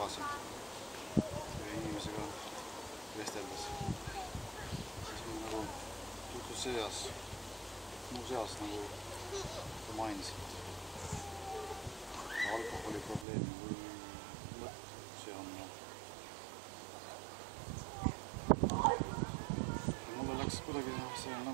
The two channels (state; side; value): drops out; left; at 13.2 s